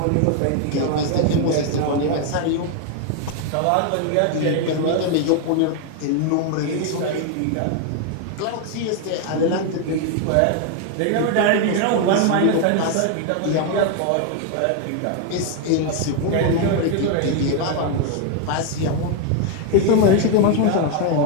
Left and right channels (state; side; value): different; both; correlation 0.01